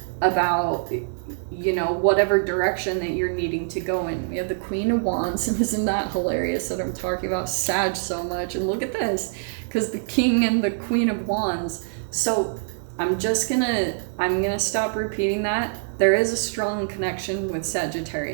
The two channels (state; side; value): silent; left; digital silence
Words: about whatever direction that you're needing to go in. We have the Queen of Wands. Isn't that hilarious that I'm talking about Sag so much? And look at this, because the King and the Queen of Wands. So I'm gonna stop repeating that. There is a strong connection with